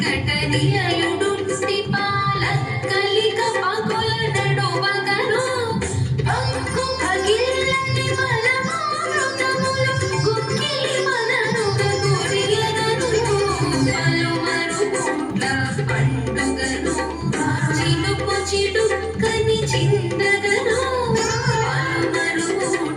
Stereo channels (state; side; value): identical; both; correlation 1.00